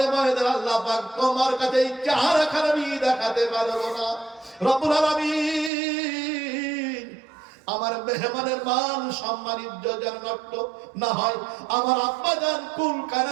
ময়দানে আল্লাহ পাক তোমার কাছে এই চেহারাখানা আমি দেখাতে পারবো না। রব্বুল আলামিন, আমার মেহমানের মান সম্মান ইজ্জত যেন নষ্ট না হয়। আমার আব্বা জান কুল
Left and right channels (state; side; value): drops out; left; at 5.7 s